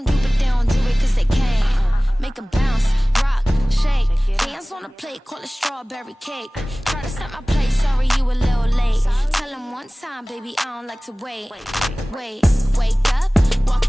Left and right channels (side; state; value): both; normal; correlation 0.98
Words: do, but they don't do it cause they can't. Make them bounce, rock, shake. Dance on the plate, call it strawberry cake. Try to set my place, sorry you a little late. Tell them one time, baby, I don't like to wait. Wake up,